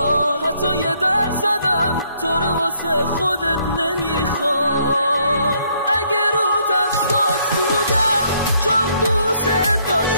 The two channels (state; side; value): inverted; both; correlation -0.68